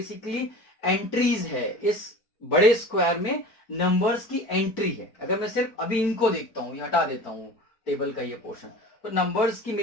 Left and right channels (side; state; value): right; late; 4.6 ms